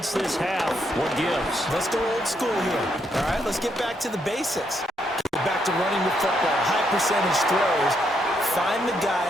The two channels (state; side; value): normal; both; correlation 0.76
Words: this half. What gives? Let's go old school here. All right, let's get back to the basics. Get back to running the football, high percentage throws. Find the